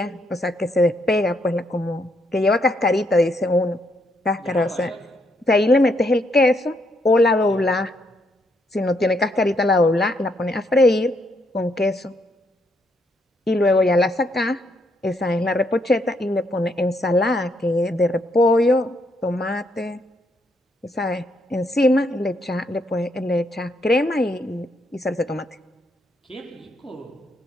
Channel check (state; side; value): normal; both; correlation 0.75